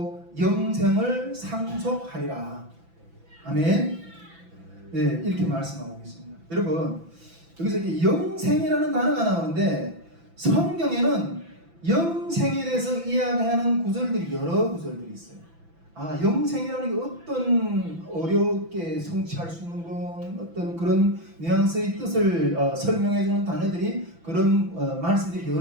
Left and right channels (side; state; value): left; late; 6.0 ms